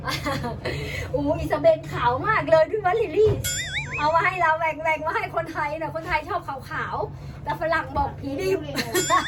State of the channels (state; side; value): identical; both; correlation 1.00